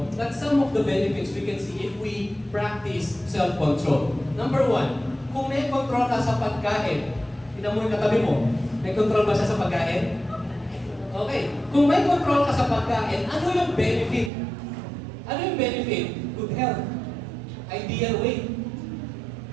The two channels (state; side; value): drops out; left; at 14.3 s